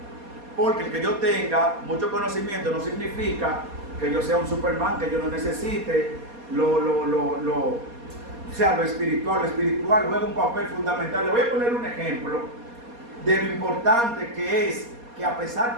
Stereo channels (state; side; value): late; left; 4.2 ms